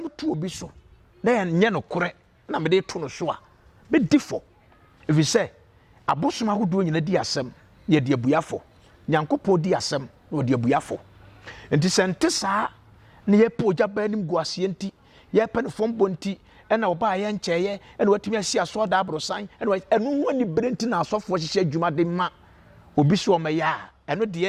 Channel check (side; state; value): both; identical; correlation 1.00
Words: two be so. They are nyano correct, na me de tono soa. Be diffo. If you say, a bossma who doing in a diasem, ye dear buyafo, Nyankopo diasem, or dear buyafo. And this antessa near po jabanim guasienti, ye pen from bonti, and I'll buy and chair, and what me see a sword abro sign, and what and when you bring in our software, she said, Juma de ma, will be so maya, and what the